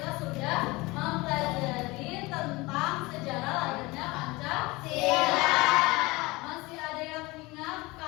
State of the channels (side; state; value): right; quieter; 22.6 dB